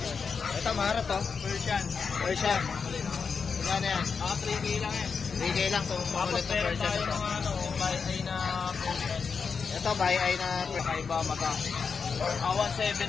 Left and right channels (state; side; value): quieter; right; 5.6 dB